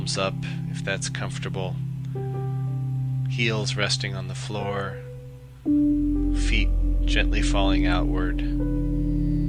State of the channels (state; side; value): identical; both; correlation 1.00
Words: up if that's comfortable, heels resting on the floor, feet gently falling outward.